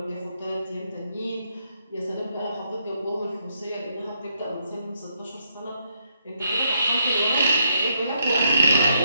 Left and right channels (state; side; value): inverted; both; correlation -0.77